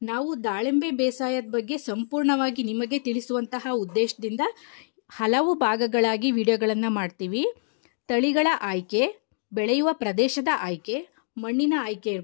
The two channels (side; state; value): right; silent; digital silence